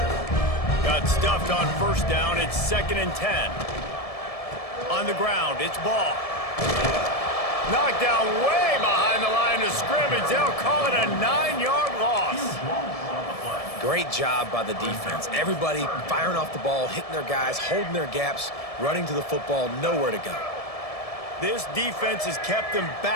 Got stuffed on first down. It's 2nd and 10. On the ground, it's ball. Knocked down way behind the line of scrimmage. They'll call it a 9-yard loss. Great job by the defense. Everybody firing off the ball, hitting their guys, holding their gaps, running to the football, nowhere to go. This defense has kept them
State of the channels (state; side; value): late; right; 1.7 ms